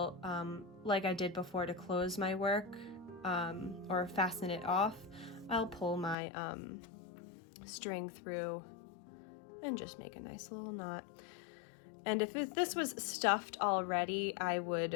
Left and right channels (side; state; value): right; drops out; at 6.2 s